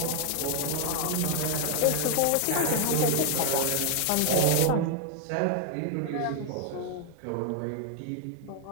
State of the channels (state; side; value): different; both; correlation 0.00